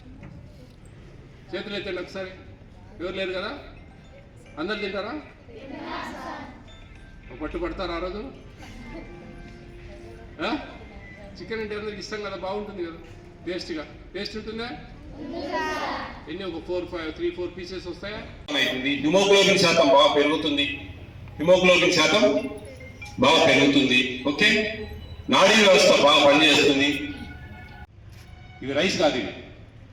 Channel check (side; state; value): both; identical; correlation 1.00